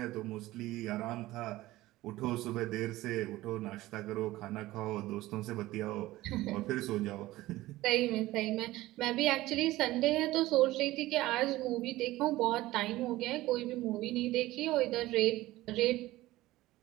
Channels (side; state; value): left; quieter; 17.3 dB